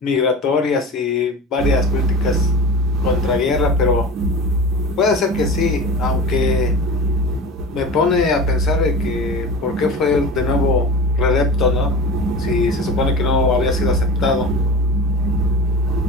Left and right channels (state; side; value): normal; both; correlation 0.32